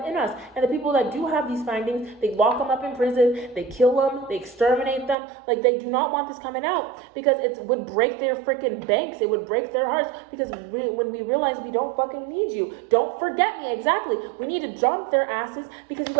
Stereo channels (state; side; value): drops out; left; at 5.2 s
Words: us. And the people that do have these findings, they lock them up in prison, they kill them, they exterminate them. Like, they do not want this coming out, because it would break their freaking banks. It would break their hearts, because when we realize we don't fucking need you. Don't forget me, exactly. We need to jump their asses, because you